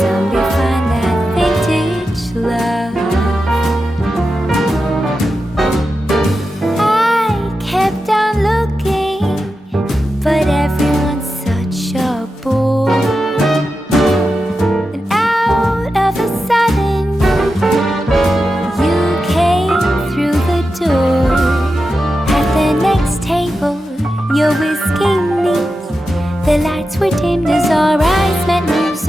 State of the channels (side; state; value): both; normal; correlation 0.90